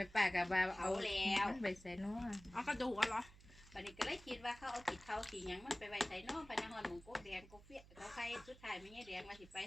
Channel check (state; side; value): noise; right; hum, 21 dB below the sound